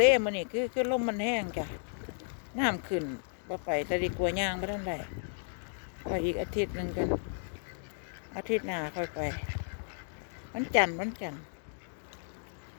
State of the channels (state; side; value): silent; right; digital silence